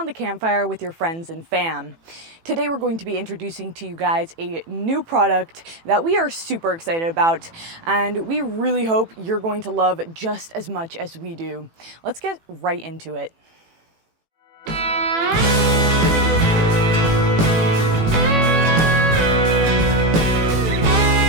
the campfire with your friends and fam. Today we're going to be introducing to you guys a new product that we are super excited about, and we really hope you're going to love just as much as we do. Let's get right into it.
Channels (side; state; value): left; late; 18 ms